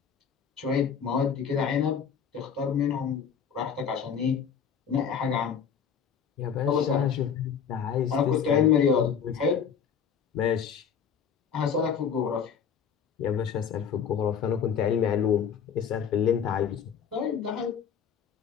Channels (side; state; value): right; quieter; 7.3 dB